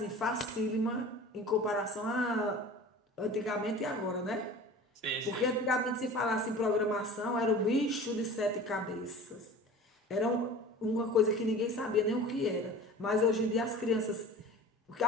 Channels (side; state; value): both; normal; correlation 0.39